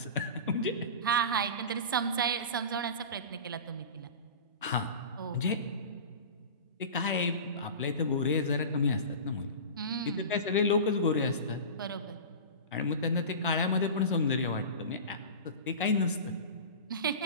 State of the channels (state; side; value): inverted; both; correlation -0.31